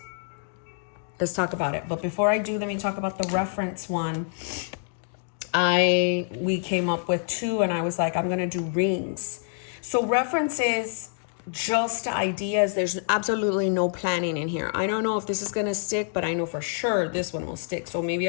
Let's talk about it. But before I do, let me talk about the reference one. We came up with 2 and I was like, I'm going to do rings. So references, just ideas. There's absolutely no planning in here. I don't know if this is going to stick, but I know for sure this one will stick. So maybe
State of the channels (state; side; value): silent; right; digital silence